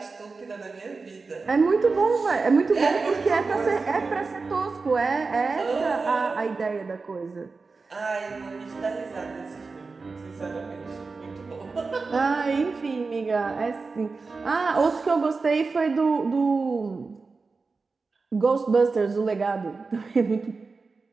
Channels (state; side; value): quieter; left; 4.2 dB